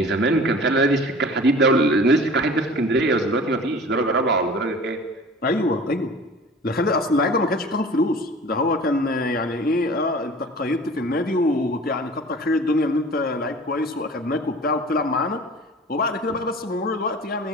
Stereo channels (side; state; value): both; normal; correlation 0.43